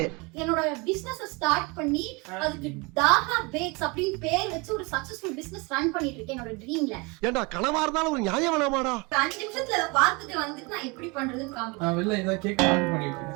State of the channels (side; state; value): left; quieter; 27.9 dB